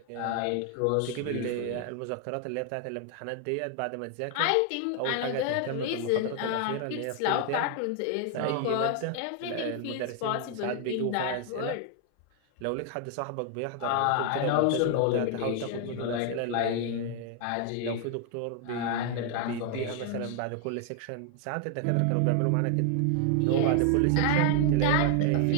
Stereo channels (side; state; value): both; different; correlation 0.00